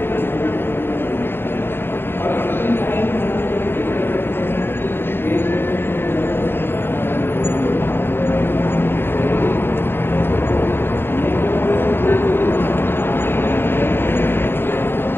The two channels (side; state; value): right; late; 0.11 ms